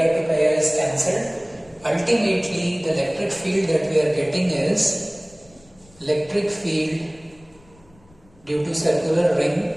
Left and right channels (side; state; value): left; noise; rumble, 28 dB below the sound